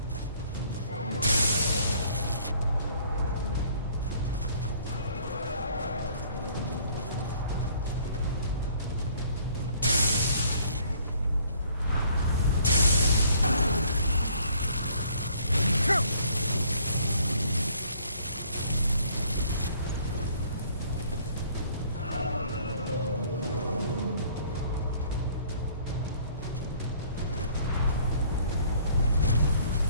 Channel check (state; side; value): inverted; both; correlation -0.59